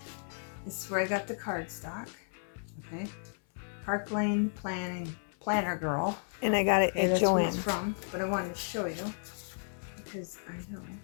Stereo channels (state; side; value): silent; right; 55 dB below the other